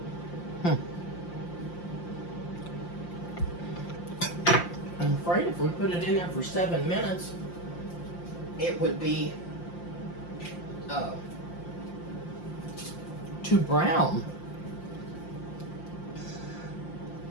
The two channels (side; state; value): right; late; 5.7 ms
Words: I'm afraid if we put it in there for 7 minutes, it would be too brown.